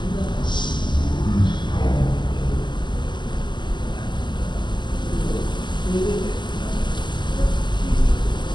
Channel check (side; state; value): right; late; 0.22 ms